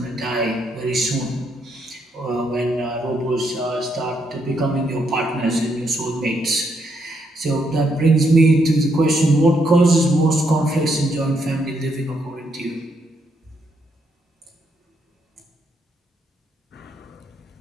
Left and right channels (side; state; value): both; normal; correlation 0.76